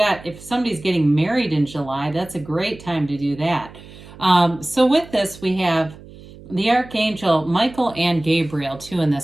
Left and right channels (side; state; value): right; noise; hum, 19 dB below the sound